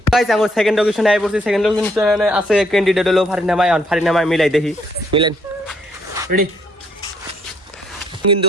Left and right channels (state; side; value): normal; both; correlation 0.69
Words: গাইস আমার সেকেন্ড লোকেশনে আই পড়ছি সেকেন্ড লোকেশনে আছে ক্যান্ডিডেট হলো ফারিনামাই মিলাই দেখি মিলেন রেডি কিন্তু